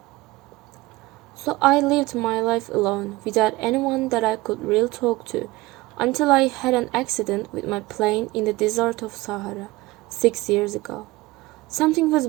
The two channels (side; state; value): left; quieter; 20.3 dB